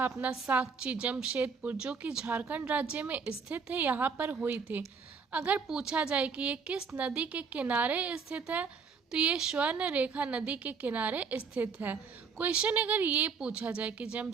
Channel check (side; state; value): left; quieter; 5.6 dB